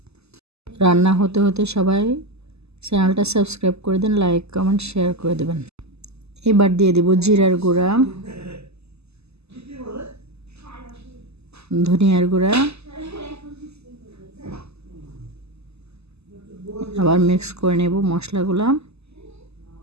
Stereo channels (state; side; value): late; left; 0.79 ms